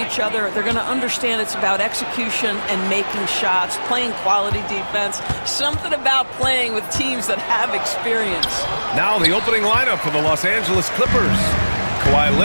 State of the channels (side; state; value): both; inverted; correlation -1.00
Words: other. They're going to understand it's about execution and making shots, playing quality defense, something about playing with teams that have experience. Now the opening lineup for the Los Angeles Clippers. Kawhi